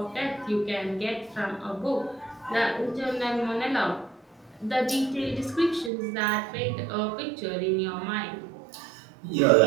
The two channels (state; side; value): drops out; left; at 5.9 s